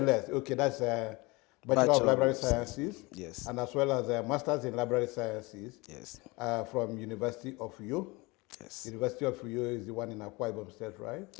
Okay, that's Bachelor of Library Sciences. Yes. And as well as a Masters in Library Sciences. Yes. From University of Uyo. Yes. University of Uyo is the one in Akwa Ibom State, right?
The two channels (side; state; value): right; quieter; 24.6 dB